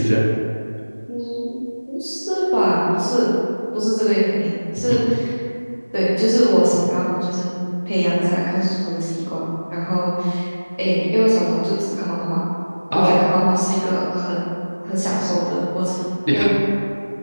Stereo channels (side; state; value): both; inverted; correlation -1.00